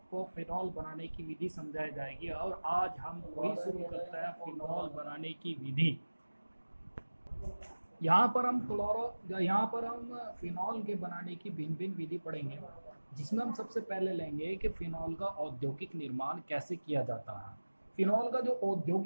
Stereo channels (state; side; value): inverted; both; correlation -1.00